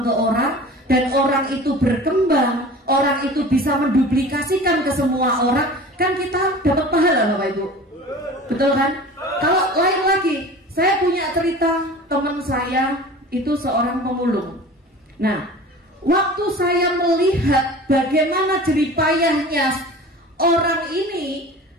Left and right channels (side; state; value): both; normal; correlation 0.39